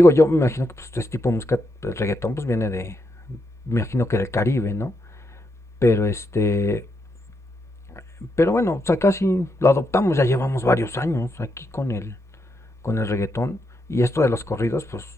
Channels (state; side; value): normal; both; correlation 0.81